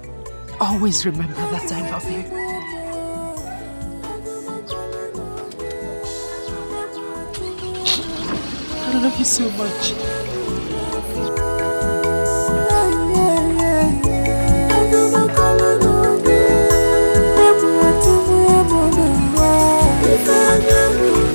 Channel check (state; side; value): inverted; both; correlation -1.00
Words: always remember that I love you. I love you so much.